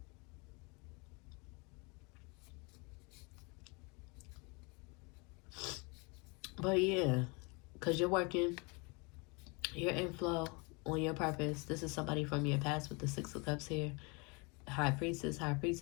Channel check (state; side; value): quieter; right; 30.0 dB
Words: But yeah, because you're working, you're in flow on your purpose. This is somebody from your past with the Six of Cups here. High Priestess, High Priest